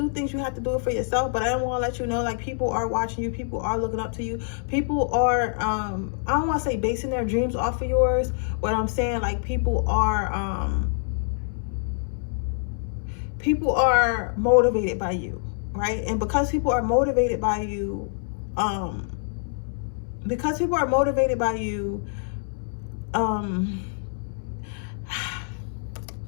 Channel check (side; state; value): right; silent; 61 dB below the other